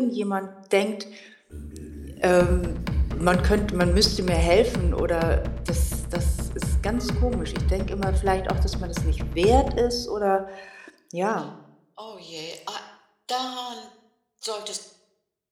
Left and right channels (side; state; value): both; identical; correlation 1.00